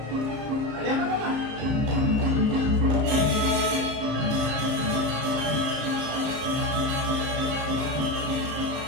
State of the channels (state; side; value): late; left; 34 ms